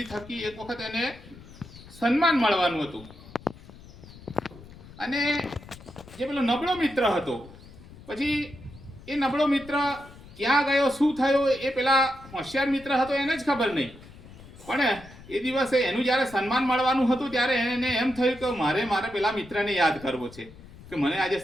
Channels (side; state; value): left; noise; rumble, 19 dB below the sound